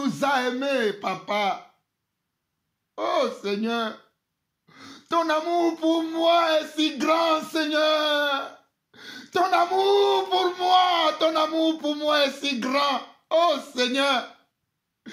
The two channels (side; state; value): both; identical; correlation 1.00